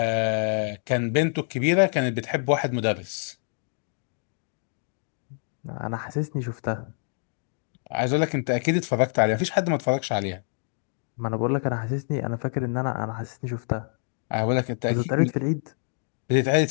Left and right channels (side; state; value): right; silent; 61 dB below the other